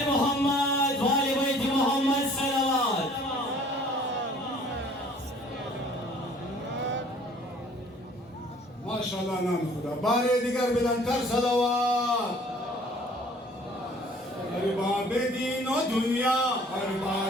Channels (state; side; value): normal; both; correlation 0.54